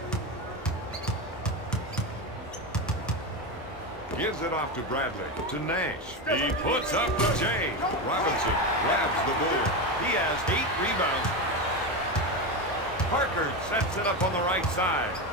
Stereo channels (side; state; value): both; normal; correlation 0.16